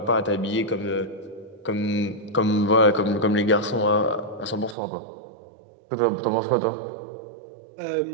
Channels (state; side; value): drops out; left; at 4.8 s